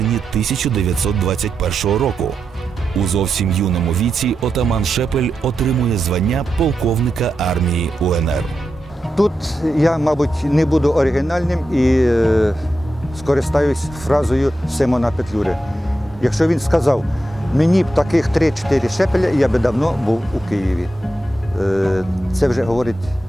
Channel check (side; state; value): both; normal; correlation 0.88